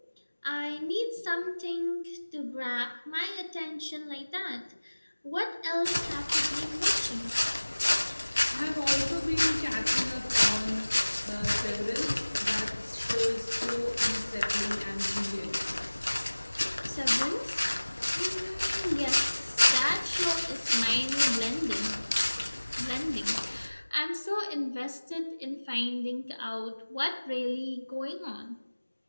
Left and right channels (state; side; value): inverted; both; correlation -1.00